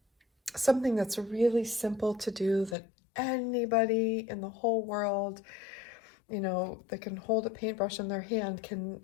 Something that's really simple to do that anybody in the whole world, you know, that can hold a paintbrush in their hand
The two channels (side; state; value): right; drops out; at 2.8 s